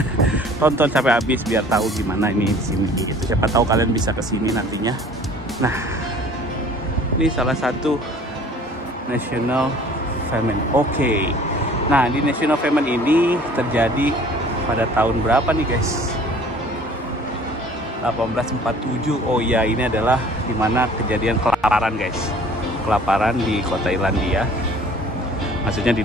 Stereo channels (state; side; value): normal; both; correlation 0.50